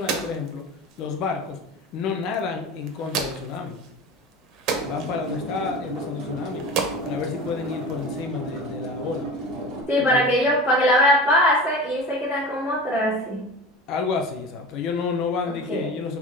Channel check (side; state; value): both; normal; correlation 0.33